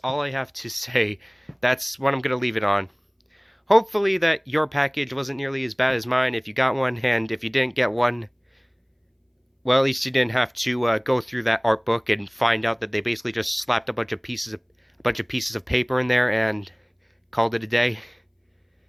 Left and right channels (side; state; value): both; identical; correlation 1.00